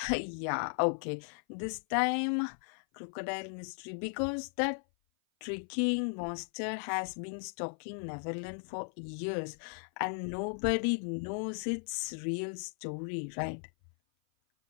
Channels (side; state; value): right; silent; 54 dB below the other